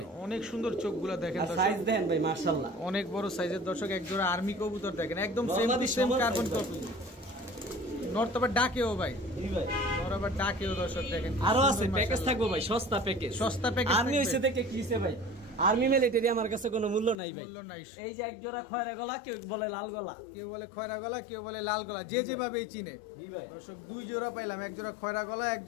অনেক সুন্দর চোখগুলা দেখেন। সাইজ দেখেন ভাই মাশাআল্লাহ, অনেক বড় সাইজের দর্শক। এক জোড়া আর্মি কবুতর দেখেন, একদম same to same carbon copy. North আবার ডাকেও ভাই। জি ভাই, নর্থ আবার ডাকেও দর্শক দেখেন। আরো আছে প্যাকেজ থাকবে ভাই, সস্তা প্যাকেজ। সস্তা প্যাকেজ আর্মি হইছে দেখে কিছে ভাই, আর্মি মিলিটারি আমার কাছে কোনো মূল্য নাই ভাই। এই যে এক জোড়া খয়রা গলা, কেউ বলে লাল গলা, কেউ বলে খয়রা গলা, কেউ বলে লাল গলা, যে যেভাবে চিনে। দর্শক 2 জোড়া পাইলাম, এক জোড়া খয়রা গলা, এক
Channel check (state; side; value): drops out; right; at 17.2 s